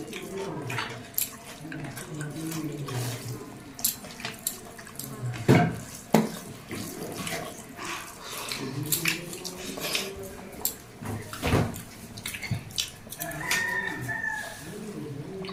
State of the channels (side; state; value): both; identical; correlation 1.00